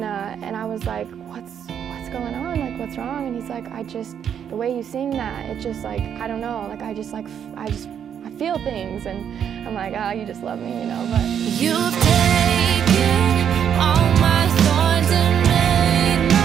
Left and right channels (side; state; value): left; quieter; 8.6 dB